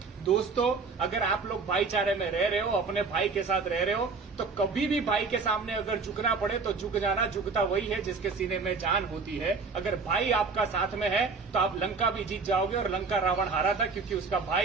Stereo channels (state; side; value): quieter; left; 4.5 dB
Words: दोस्तों, अगर आप लोग भाईचारे में रह रहे हो, अपने भाई के साथ रह रहे हो, तो कभी भी भाई के सामने अगर झुकना पड़े तो झुक जाना। झुकता वही है जिसके सीने में जान होती है। अगर भाई आपका साथ में है तो आप लंका भी जीत जाओगे। और लंका रावण हारा था क्योंकि उसका